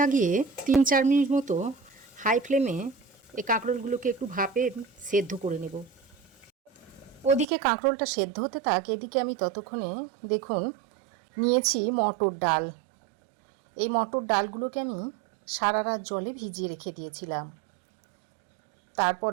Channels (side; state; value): left; drops out; at 7.5 s